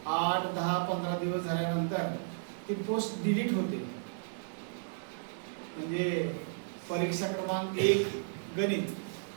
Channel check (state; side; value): silent; left; digital silence